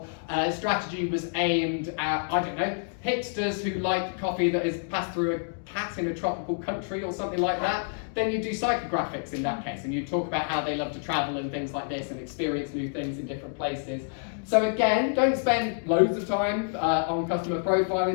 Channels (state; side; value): silent; right; digital silence